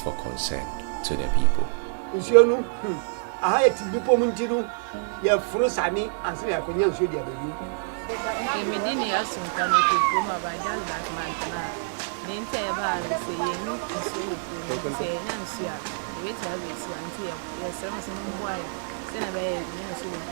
concern to the people. wait to have it until you're some boy. Then I buy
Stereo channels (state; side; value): silent; left; digital silence